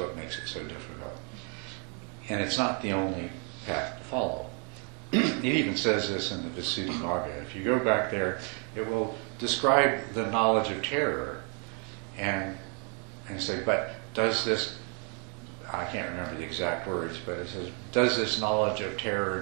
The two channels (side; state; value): left; quieter; 36.3 dB